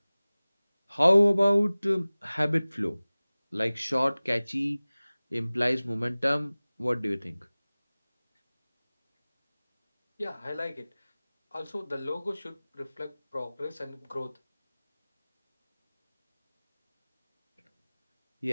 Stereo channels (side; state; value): both; inverted; correlation -0.99